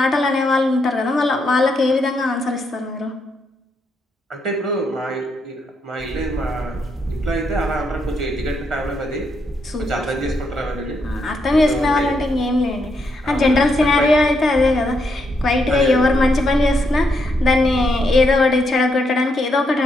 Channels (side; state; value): both; normal; correlation 0.79